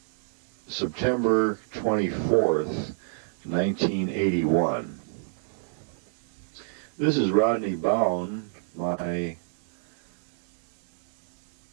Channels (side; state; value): left; silent; digital silence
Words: September 24th, 1981. This is Rodney Bowen, my